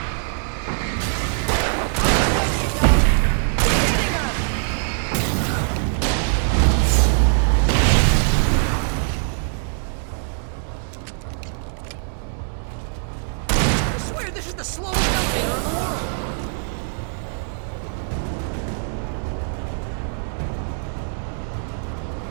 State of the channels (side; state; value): left; silent; digital silence